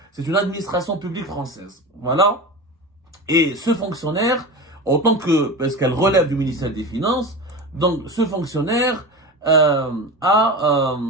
C'est une administration publique française. Voilà. Et ce fonctionnaire, parce qu'elle relève du ministère des Finances, donc ce fonctionnaire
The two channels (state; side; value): normal; both; correlation 0.27